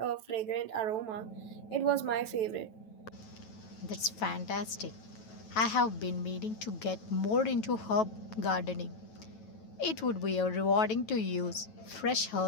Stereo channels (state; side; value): late; right; 9.2 ms